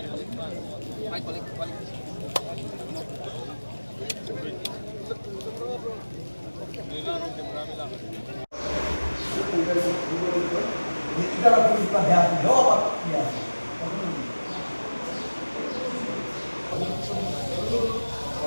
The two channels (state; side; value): inverted; both; correlation -1.00